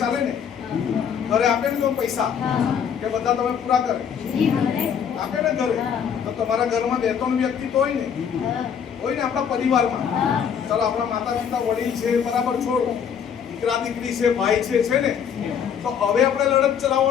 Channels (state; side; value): quieter; right; 7.7 dB